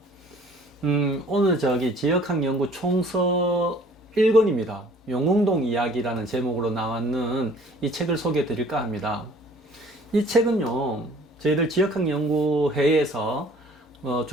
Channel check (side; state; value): both; normal; correlation 0.54